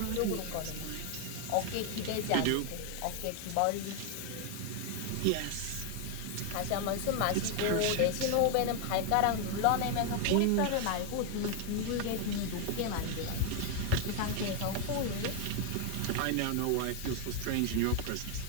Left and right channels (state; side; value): different; both; correlation 0.00